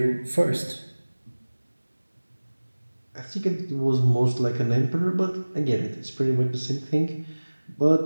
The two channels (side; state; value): both; inverted; correlation -1.00